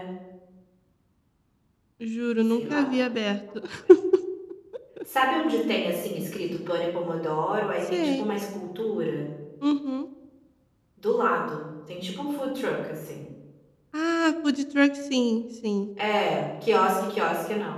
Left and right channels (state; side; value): identical; both; correlation 1.00